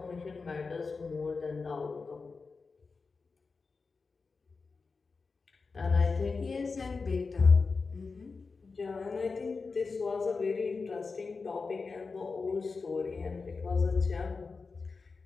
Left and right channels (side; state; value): right; quieter; 4.5 dB